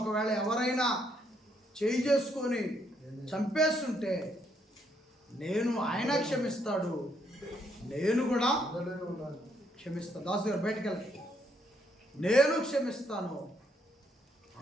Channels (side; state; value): both; normal; correlation 0.73